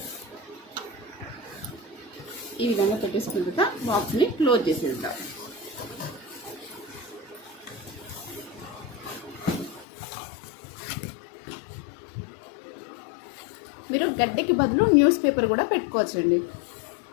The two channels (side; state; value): right; drops out; at 9.9 s